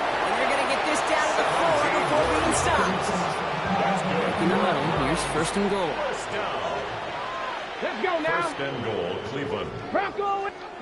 And they're going to get this down to the 4 before being stopped. In the huddle, here's 1st and goal. First down. Let's go now. 1st and goal, Cleveland. Bronco.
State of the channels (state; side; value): identical; both; correlation 1.00